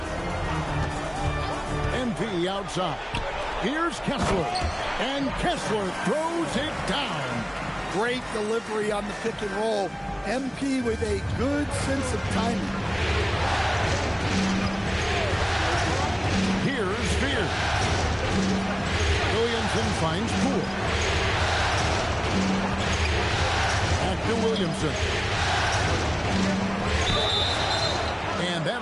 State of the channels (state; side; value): identical; both; correlation 1.00